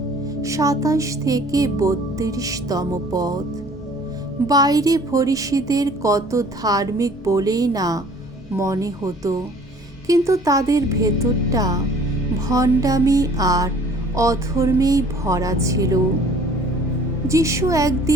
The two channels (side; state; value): both; normal; correlation 0.52